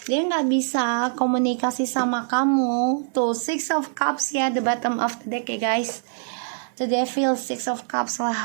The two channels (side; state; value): left; silent; 57 dB below the other